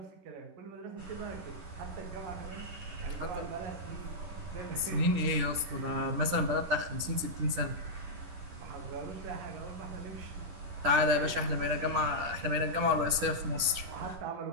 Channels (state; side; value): late; left; 11 ms